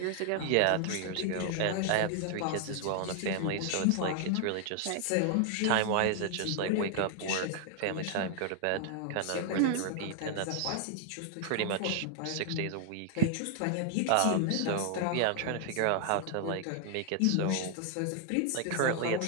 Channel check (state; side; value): different; both; correlation 0.00